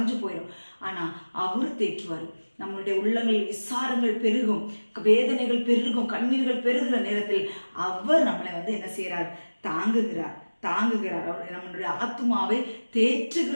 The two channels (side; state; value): both; inverted; correlation -1.00